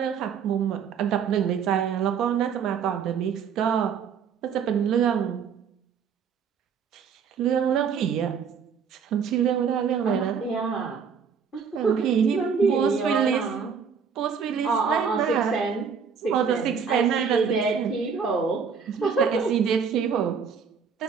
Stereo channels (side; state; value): left; quieter; 6.5 dB